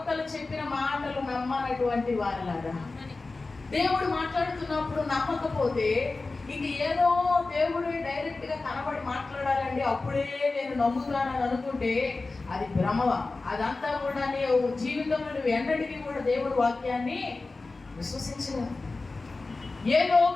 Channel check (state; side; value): quieter; right; 3.6 dB